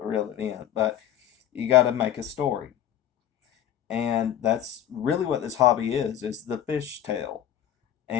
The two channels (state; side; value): quieter; right; 10.8 dB